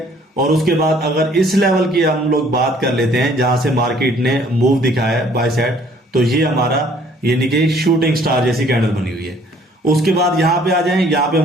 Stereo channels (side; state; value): both; normal; correlation 0.59